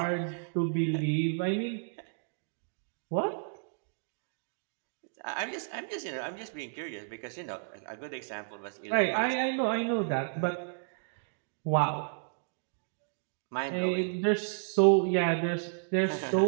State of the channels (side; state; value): left; silent; digital silence